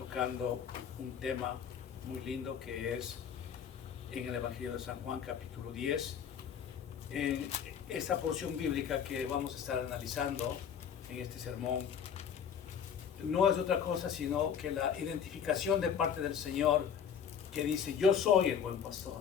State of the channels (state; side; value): quieter; right; 7.9 dB